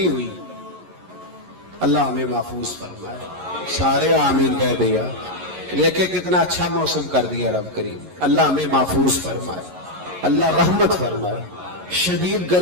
ہوئی۔ اللہ ہمیں محفوظ فرمائے، سارے آمین کہہ دیا، دیکھے کتنا اچھا موسم کر دیا رب کریم، اللہ ہمیں محفوظ فرمائے، اللہ رحمت فرمائے۔ شدید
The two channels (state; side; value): late; left; 11 ms